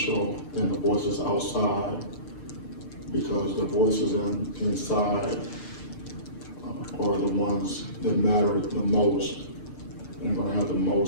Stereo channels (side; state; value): right; late; 6.8 ms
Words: than the voices outside, because the voices inside are the ones that matter the most and going to have the